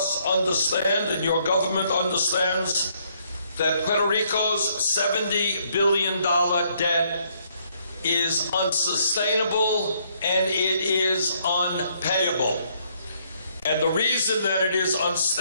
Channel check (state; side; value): inverted; both; correlation -0.70